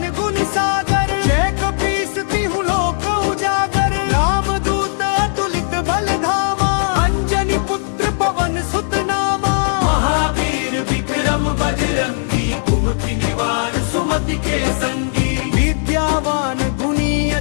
गुण सागर जय कपीस तिहु लोक उजागर रामदूत अतुलित बल धामा अंजनी पुत्र पवन सुत नामा महावीर विक्रम बजरंगी कुमति निवार सुमति के संगी विद्यावान गुणी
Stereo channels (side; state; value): right; silent; digital silence